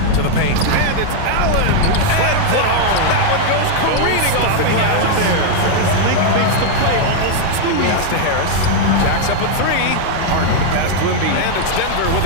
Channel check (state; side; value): different; both; correlation 0.00